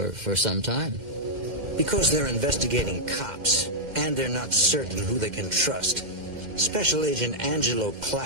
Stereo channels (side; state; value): left; late; 2.1 ms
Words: some time. Because they're investigating cops, and they're not certain who they can trust, Special Agent Angelo